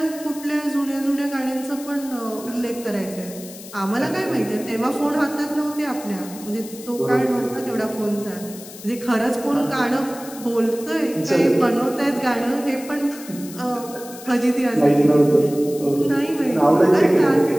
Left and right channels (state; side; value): noise; left; hiss, 16 dB below the sound